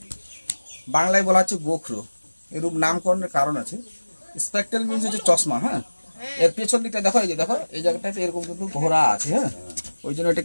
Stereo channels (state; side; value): inverted; both; correlation -1.00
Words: বাংলায় বলা হচ্ছে গোখরো। এরূপ নামকরণের কারণ আছে। স্পেকট্রাল মিনস হচ্ছে চশমা, হ্যাঁ, এর পেছন দিকটা দেখো, এই যে দেখো এই জায়গাটাতে এরকম কিন্তু ঘোরা আছে, হ্যাঁ, ওই জন্য